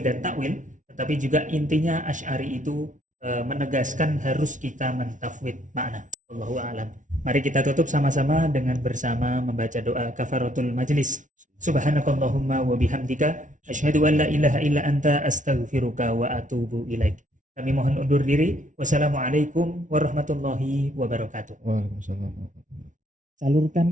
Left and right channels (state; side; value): late; left; 0.37 ms